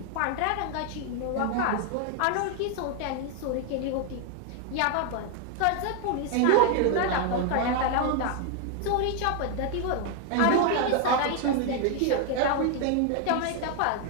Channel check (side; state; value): both; different; correlation 0.01